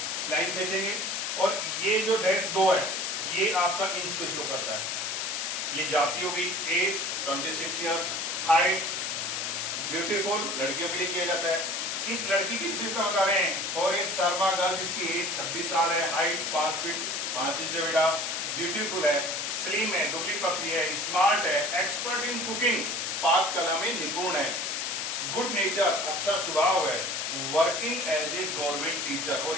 लाइन खींचेंगे और ये जो डैश 2 है ये आपका इंच को शो करता है. ये जाति होगी. As 26 years. हाइट ब्यूटीफुल, लड़कियों के लिए किया जाता है. इस लड़की की विशेषता बता रहे हैं. और ये शर्मा गर्ल जिसकी एज 26 साल है, हाइट 5 फीट 5 इंच है बेटा, ब्यूटीफुल है, स्लिम है, दुबली पतली है, स्मार्ट है, एक्सपर्ट इन कुकिंग, पाक कला में निपुण है, गुड नेचर, अच्छा स्वभाव है, working as a government teacher. और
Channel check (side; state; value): left; noise; hiss, 2 dB below the sound